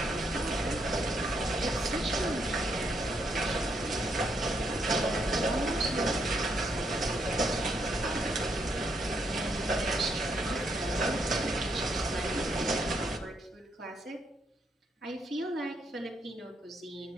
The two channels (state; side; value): normal; both; correlation 0.76